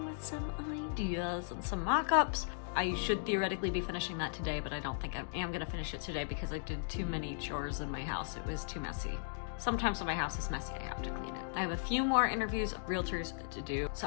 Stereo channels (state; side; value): silent; right; digital silence